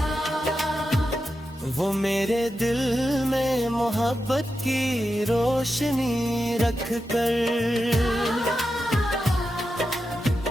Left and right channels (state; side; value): normal; both; correlation 0.89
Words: मेरे दिल में मोहब्बत की रोशनी रख कर